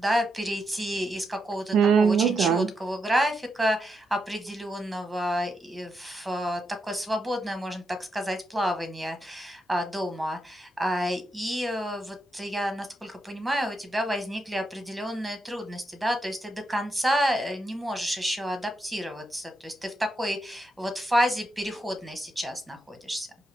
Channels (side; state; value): both; normal; correlation 0.83